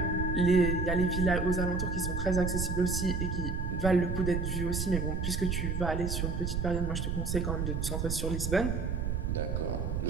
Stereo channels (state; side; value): noise; right; rumble, 1 dB below the sound